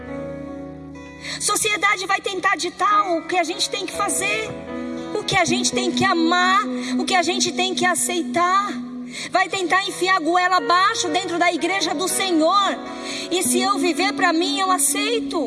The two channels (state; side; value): identical; both; correlation 1.00